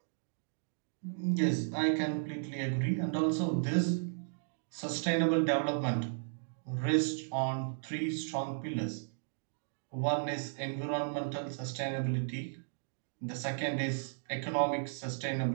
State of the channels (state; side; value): silent; left; digital silence